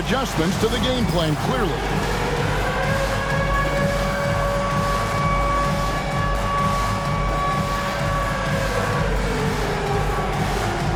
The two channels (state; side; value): identical; both; correlation 1.00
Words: to the game plan, clearly.